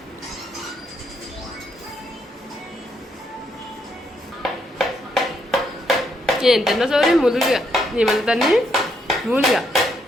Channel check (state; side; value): normal; both; correlation 0.75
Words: ఏం తిన్నా సౌరి ములుగా ఏమన్నా దాన్ని మూలుగా